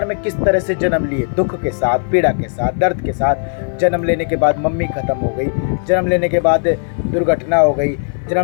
में किस तरह से जन्म लिए, दुख के साथ, पीड़ा के साथ, दर्द के साथ। जन्म लेने के बाद मम्मी खत्म हो गई, जन्म लेने के बाद दुर्घटना हो गई,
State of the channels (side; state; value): right; silent; 60 dB below the other